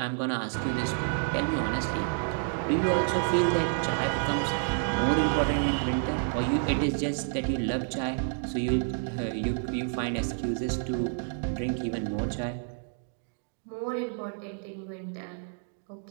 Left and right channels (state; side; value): silent; left; 58 dB below the other